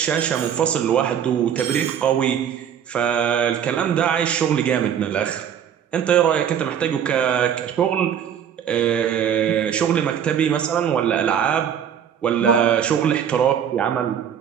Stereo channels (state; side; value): quieter; left; 8.7 dB